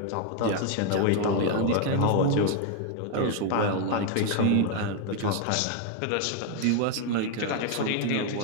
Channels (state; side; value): different; both; correlation 0.00